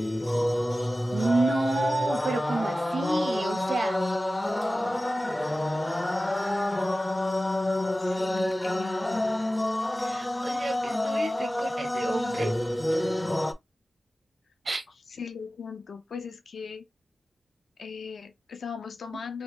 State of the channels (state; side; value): normal; both; correlation 0.95